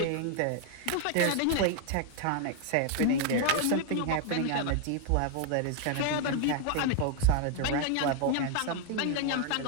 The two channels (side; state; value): both; different; correlation 0.00